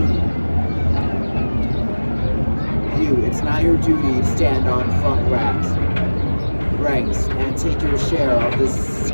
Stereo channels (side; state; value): both; inverted; correlation -1.00